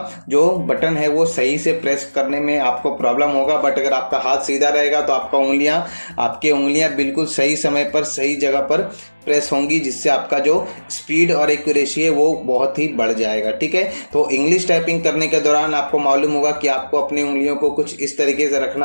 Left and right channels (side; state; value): both; inverted; correlation -1.00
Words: जो बटन है वो सही से प्रेस करने में आपको प्रॉब्लम होगा। बट अगर आपका हाथ सीधा रहेगा तो आपकी उंगलियां बिल्कुल सही समय पर सही जगह पर प्रेस होंगी, जिससे आपका जो स्पीड और एक्यूरेसी है वो बहुत ही बढ़ जाएगा। ठीक है, तो इंग्लिश टाइपिंग करने के दौरान आपको मालूम होगा कि आपको अपनी उंगलियों को कुछ इस तरीके से